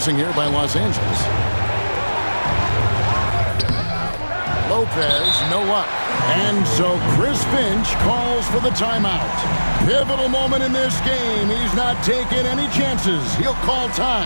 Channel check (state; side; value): inverted; both; correlation -1.00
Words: here by Los Angeles. Lopez, no luck. And so Chris Finch calls for the timeout. Pivotal moment in this game. He's not taking any chances. He'll call